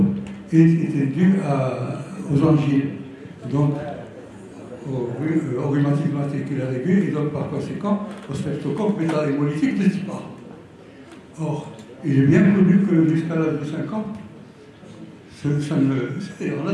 et étaient dus aux angies, donc au rhumatisme articulaire aigu et donc par conséquent au streptocoque métahémolytique de type A. Or, il est bien connu que jusqu'à l'âge de 5 ans, on a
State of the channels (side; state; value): both; identical; correlation 1.00